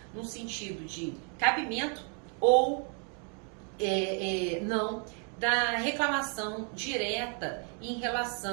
no sentido de cabimento ou não da reclamação direta em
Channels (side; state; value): left; quieter; 39.6 dB